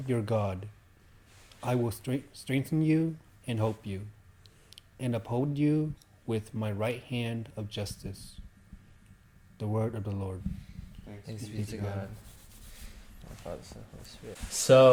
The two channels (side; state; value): both; identical; correlation 1.00